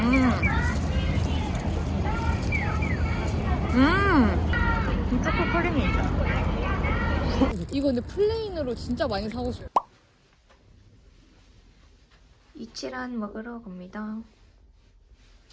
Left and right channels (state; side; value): identical; both; correlation 1.00